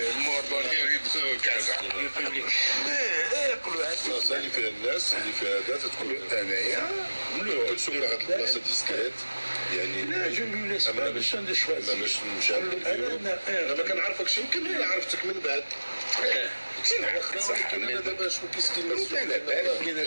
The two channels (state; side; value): inverted; both; correlation -1.00